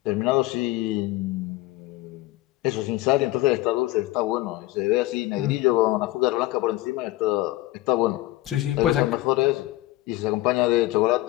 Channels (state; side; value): quieter; right; 17.9 dB